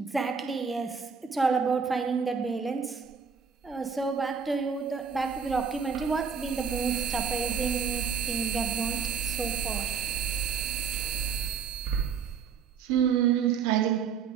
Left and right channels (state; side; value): quieter; left; 6.3 dB